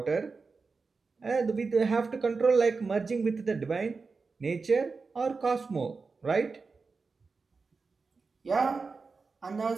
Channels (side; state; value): left; quieter; 4.4 dB